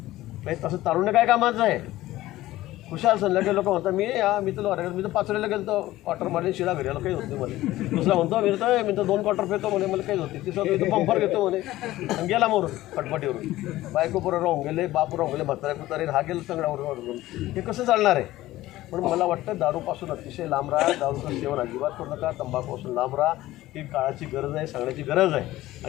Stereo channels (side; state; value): right; quieter; 16.2 dB